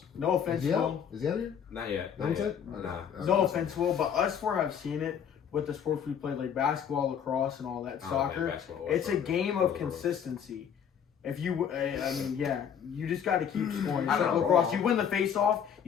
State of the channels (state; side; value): quieter; right; 8.2 dB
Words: No offense, Is he Will. out? Is he out of here? Not yet. That was Not it? yet. Nah. No offense, Will, but us four have seen it with the sports we play, like basketball, lacrosse, and all that. I don't Soccer. play basketball or It's a soccer. game of consistency. If you, you just got to keep scoring. It's I like know. lacrosse. You win the face-off,